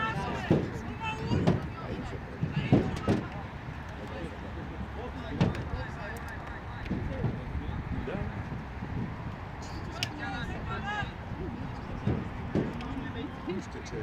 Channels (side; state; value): both; identical; correlation 1.00